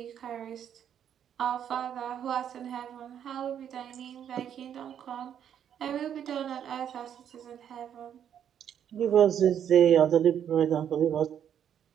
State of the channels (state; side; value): quieter; left; 9.2 dB